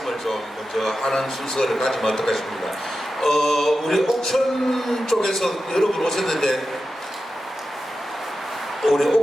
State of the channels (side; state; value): both; normal; correlation 0.91